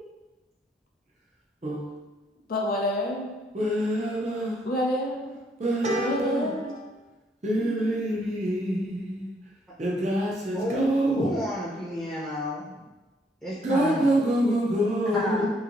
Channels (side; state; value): both; normal; correlation 0.69